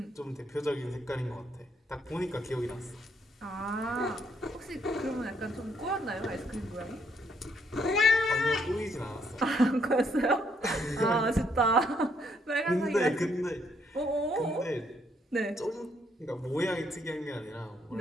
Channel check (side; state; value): both; normal; correlation 0.71